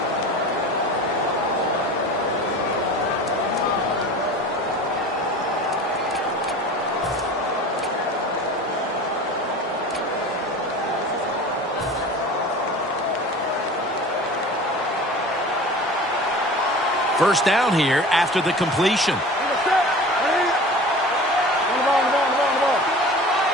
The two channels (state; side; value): normal; both; correlation 0.38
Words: First down here after the completion.